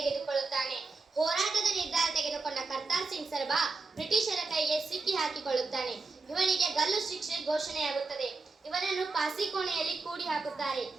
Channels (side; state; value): left; quieter; 3.9 dB